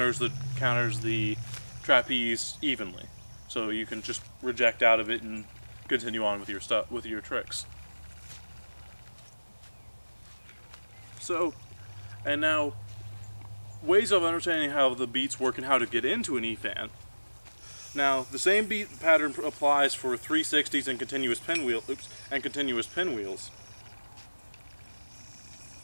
the trapeze evenly, so you can just reject out of it and continue on with your tricks. So, and now, ways of understanding how the beats work and how to get into an EFAN. Now, the same beat pattern applies for 360s and continuous pinwheels.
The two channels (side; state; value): both; inverted; correlation -1.00